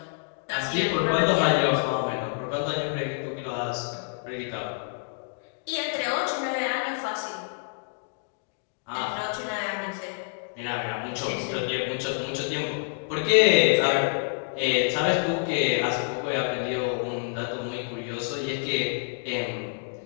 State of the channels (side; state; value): right; silent; digital silence